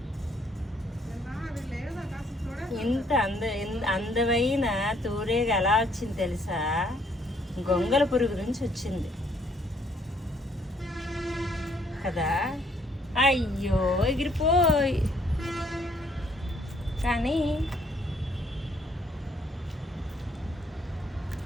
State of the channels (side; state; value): both; normal; correlation 0.66